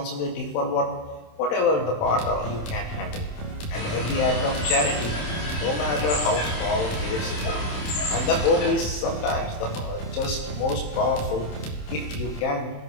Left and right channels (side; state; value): right; late; 27 ms